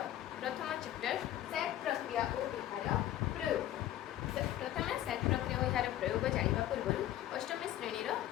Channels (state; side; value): quieter; right; 13.0 dB